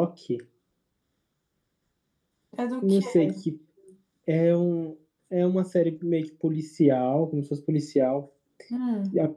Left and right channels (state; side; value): identical; both; correlation 1.00